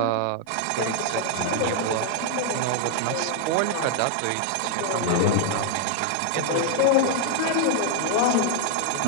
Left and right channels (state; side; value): different; both; correlation 0.00